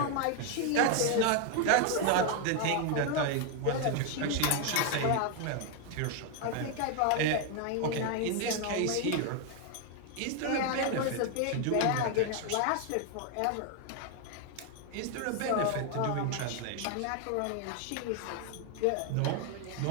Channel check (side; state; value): both; different; correlation 0.01